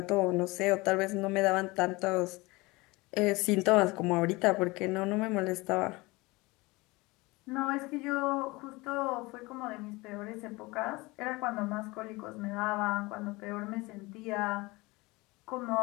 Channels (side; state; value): right; quieter; 23.0 dB